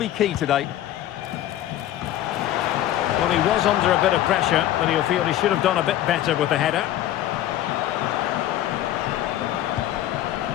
key today. Well, he was under a bit of pressure, but he'll feel he should have done a bit better with the header.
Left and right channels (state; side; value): quieter; right; 13.0 dB